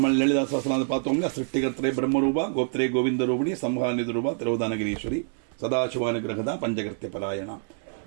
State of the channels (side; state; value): left; silent; 61 dB below the other